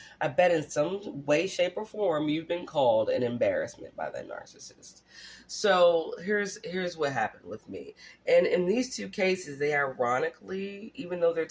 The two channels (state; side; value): identical; both; correlation 1.00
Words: I bet in some way, shape, or form you've been called an embarrassment by that narcissist. So here's what happened with me. And in these two cases, they ironically, even though they're